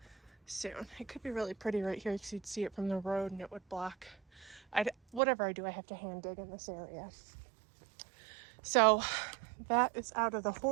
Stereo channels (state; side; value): drops out; left; at 5.2 s